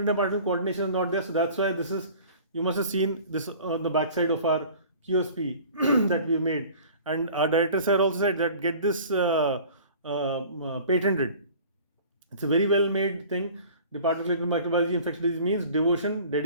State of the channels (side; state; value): both; inverted; correlation -0.45